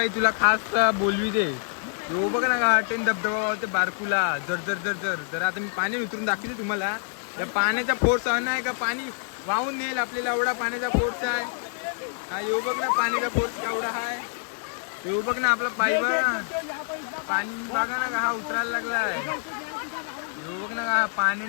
तुला खास बोलवी दे. तो बघ ना का टेन धबधबा होते बारकुला जर जर जर जर जर. आता मी पाणी उतरून दाखवते तुम्हाला. या पाण्याचा फोर्स आहे का पाणी वाहून नेल आपल्याला. एवढा पाण्याचा फोर्स आहे. हा येऊ बघ ना पाण्याचा फोर्स केवढा आहे. येऊ बघ ना आपला पाईप पाणी बघा ना का हा उतरायला लागलाय. येऊ बघ ना का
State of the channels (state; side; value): silent; right; digital silence